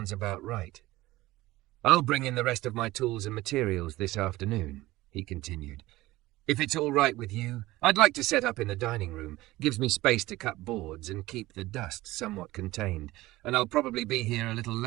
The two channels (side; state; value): left; quieter; 18.1 dB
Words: about right. I'll bring in the rest of my tools and materials this afternoon, he continued. If it's all right with you, I'd like to set up in the dining room. Gives me space to cut boards and keep the dust somewhat contained. And I'll probably be here a little